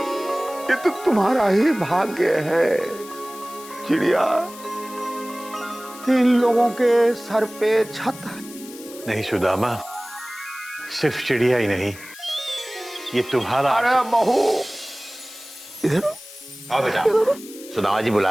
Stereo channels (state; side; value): noise; left; hiss, 17 dB below the sound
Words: ये तो तुम्हारा ही भाग्य है चिड़िया। इन लोगों के सर पे छत है। नहीं सुदामा, सिर्फ चिड़िया ही नहीं, ये तुम्हारा। अरे बहू, इधर आओ बेटा, सुदामा जी